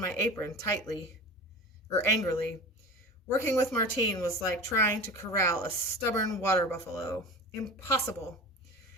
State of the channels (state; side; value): normal; both; correlation 0.33